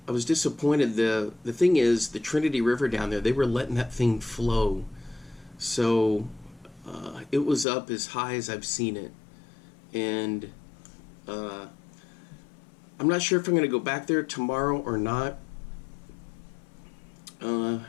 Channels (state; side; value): drops out; right; at 7.7 s